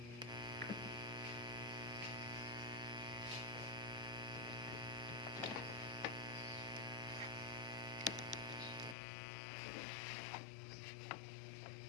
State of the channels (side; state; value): right; drops out; at 9.0 s